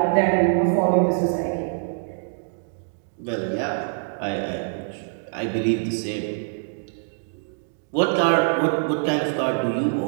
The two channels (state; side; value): silent; left; digital silence